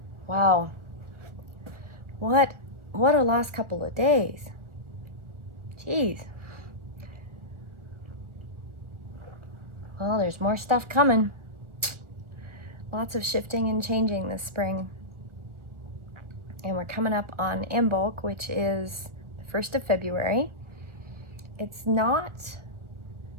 Wow. What a last couple of days. Jeez. Well, there's more stuff coming. Lots of shifting and changing this spring. And we're coming up on Imbolc, which is the 1st of February. It's not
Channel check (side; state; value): left; late; 1.4 ms